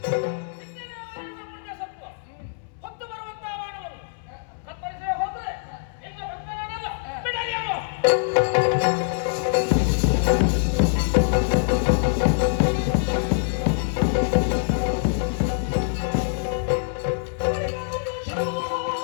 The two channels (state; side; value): silent; right; 62 dB below the other